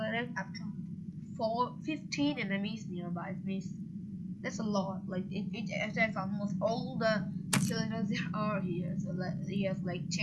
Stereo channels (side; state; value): both; identical; correlation 1.00